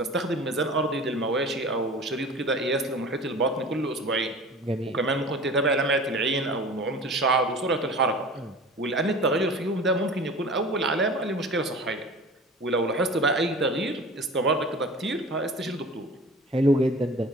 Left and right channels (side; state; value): both; normal; correlation 0.39